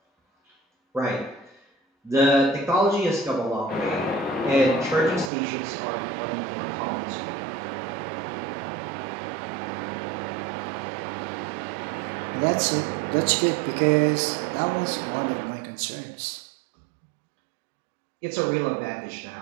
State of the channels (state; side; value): drops out; left; at 5.3 s